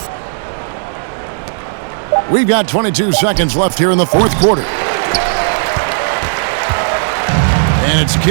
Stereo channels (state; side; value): silent; left; digital silence